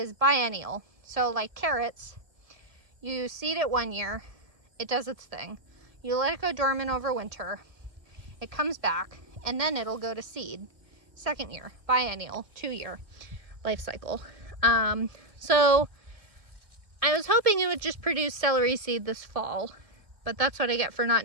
biennial. So like carrots, you seed it 1 year, it does its thing. You let it go dormant over winter, it comes back, and then it'll go to seed. Second year, biennial, 2-year life cycle. So I was hoping it would just produce celery seed this fall, but that's what I get for not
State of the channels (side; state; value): left; late; 1.7 ms